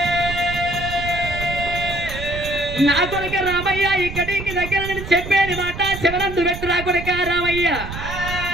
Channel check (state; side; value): noise; right; rumble, 9 dB below the sound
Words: నా కొడుక రామయ్య ఇక్కడికి దగ్గర నుండి చెప్పేది మాట శివరందు పెట్టు నా కొడుక రామయ్య